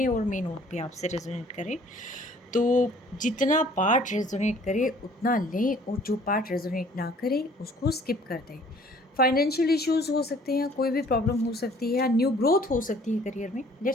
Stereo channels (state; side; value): normal; both; correlation 0.55